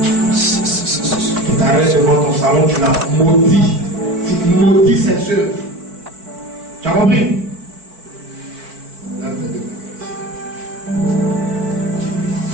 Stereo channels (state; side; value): late; left; 4.5 ms